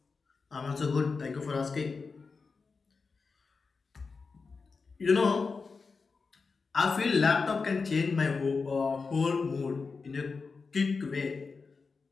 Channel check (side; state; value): right; quieter; 4.6 dB